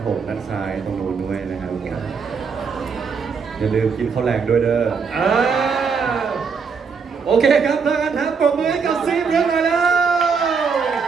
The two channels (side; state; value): left; quieter; 5.6 dB